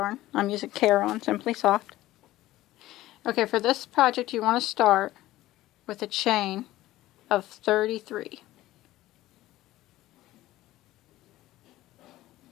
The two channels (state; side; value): quieter; right; 16.0 dB